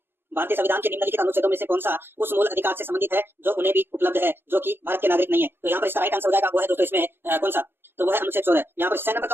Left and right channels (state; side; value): late; left; 0.10 ms